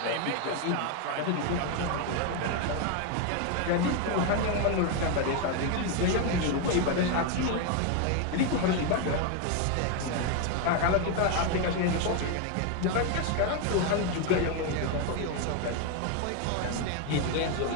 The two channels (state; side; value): different; both; correlation 0.01